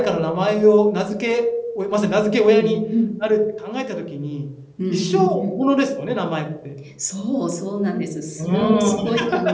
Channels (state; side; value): identical; both; correlation 1.00